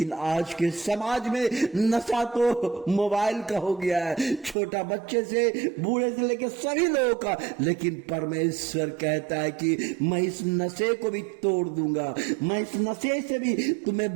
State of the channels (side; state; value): left; drops out; at 4.5 s